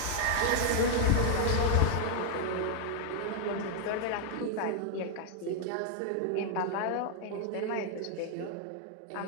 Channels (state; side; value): different; both; correlation -0.01